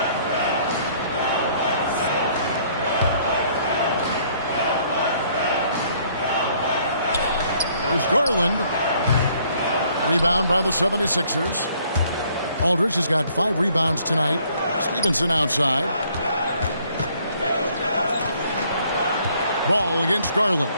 Here's Garland. Rebound by the 76ers. Aldridge has got 5 rebounds tonight. Stevenson outside. Ball against Garland.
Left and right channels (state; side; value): inverted; both; correlation -0.63